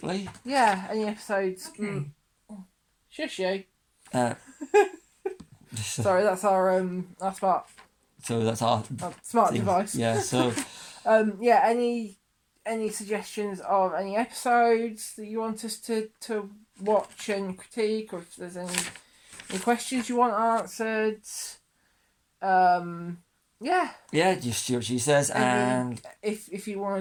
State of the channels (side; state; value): both; identical; correlation 1.00